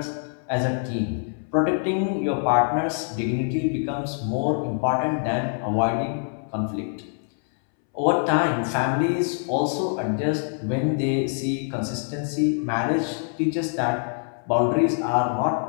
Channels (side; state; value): right; silent; 62 dB below the other